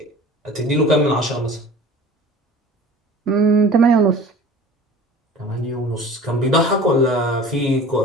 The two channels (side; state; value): both; normal; correlation 0.42